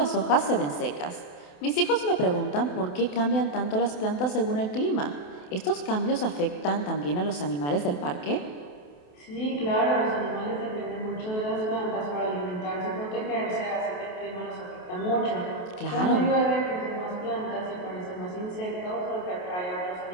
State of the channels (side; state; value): right; late; 28 ms